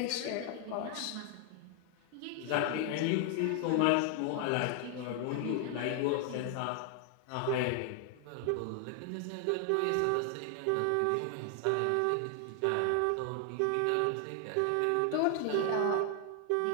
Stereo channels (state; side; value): different; both; correlation 0.00